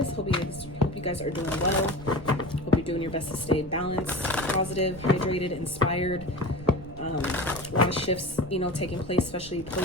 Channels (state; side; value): noise; right; rumble, 17 dB below the sound